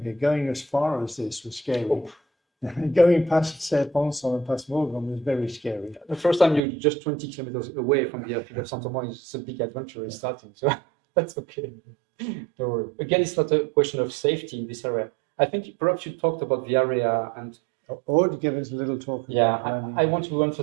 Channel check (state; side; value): drops out; left; at 6.6 s